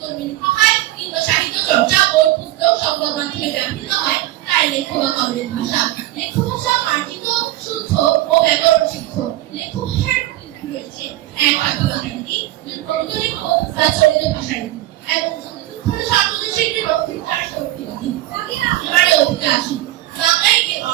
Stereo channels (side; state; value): left; quieter; 15.7 dB